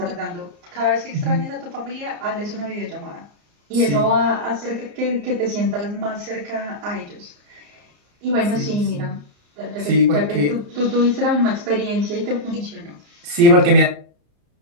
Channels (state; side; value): late; left; 34 ms